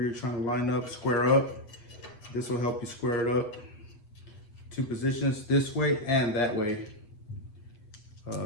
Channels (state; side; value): late; right; 8.2 ms